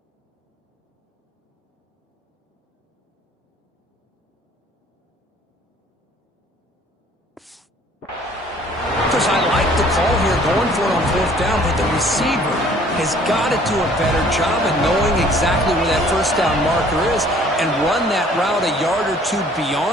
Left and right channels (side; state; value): both; normal; correlation 0.56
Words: I like the call here, going for it on fourth down, but the receiver has got to do a better job of knowing exactly where that first down marker is and run that route a yard or two